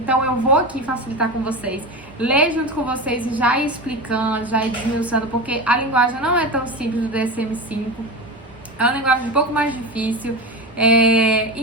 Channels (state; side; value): normal; both; correlation 0.23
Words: eu vou aqui facilitar com vocês, ler junto com vocês e já ir explicando, já ir desmiuçando, porque a linguagem não é tão simples do DSM-5, é uma linguagem um pouco mais difícil,